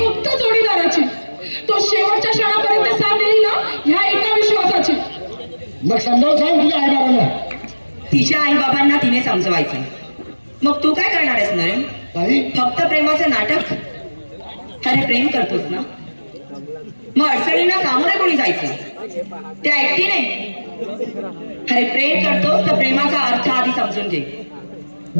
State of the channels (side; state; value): both; inverted; correlation -1.00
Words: जोडीदाराची. तो शेवटच्या क्षणापर्यंत साथ देईल ना ह्या एका विश्वासाची. मग समजावून सांग तुझ्या आई बाबांना. तिच्या आई बाबांना तिने समजवायचं. मग तू काय करणार आहेस नरेन? ताई फक्त प्रेमाचं नाटक? अरे प्रेम करतोस ना मग अडचणींना सामोरे कोणी जायचं? त्या एकटीने? अरे प्रेम करतोस तर प्रेमाचा अर्थ आधी समजून घे.